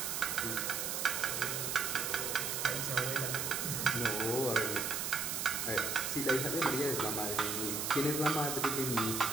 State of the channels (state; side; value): noise; right; hiss, 1 dB below the sound